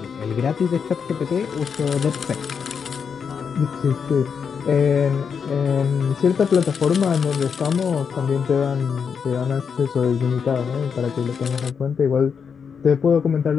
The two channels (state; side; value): quieter; right; 6.4 dB